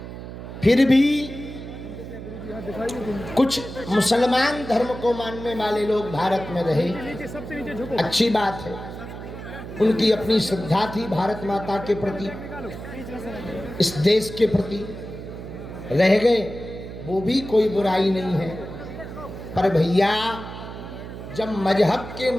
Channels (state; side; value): noise; right; hum, 11 dB below the sound